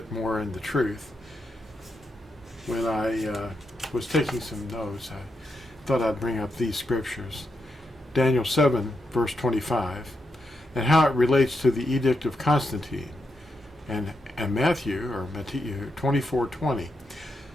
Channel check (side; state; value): both; normal; correlation 0.84